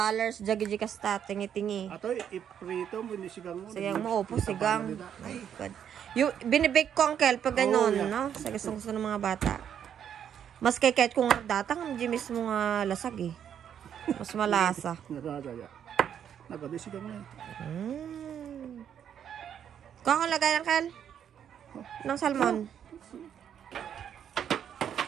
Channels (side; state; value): left; quieter; 8.9 dB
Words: jagi kasta, tingi-tingi. Ato, iprito mo, inisigang mo. Sigang mo, opo, sigang. Ay, God. Yung binibake ko, uncle, pag gano'n, no? Sa gusto ng mga bata. Mas kay kahit kung datang, hindi mismo nga lasag eh. Mas malasa. Nagadaya. Nagadisigang mo eh. Kakalagay, uncle? Ng salmon.